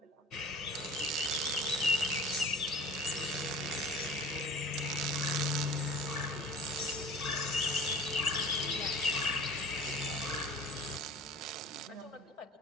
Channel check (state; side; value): normal; both; correlation 0.43